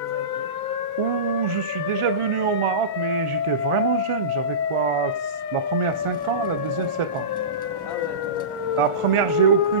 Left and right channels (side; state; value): left; late; 1.4 ms